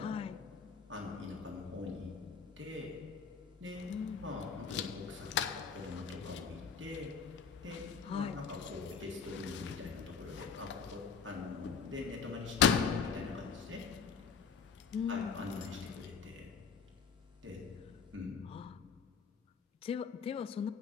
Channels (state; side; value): quieter; right; 6.1 dB